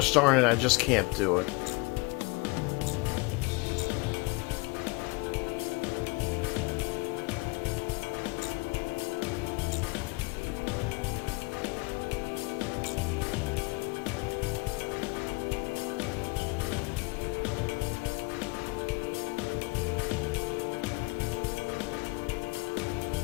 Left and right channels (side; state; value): right; quieter; 27.5 dB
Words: darn it, I just can't do it.